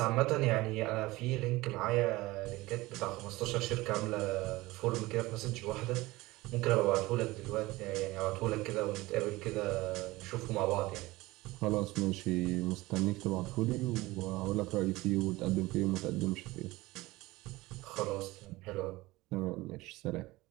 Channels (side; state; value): left; quieter; 19.9 dB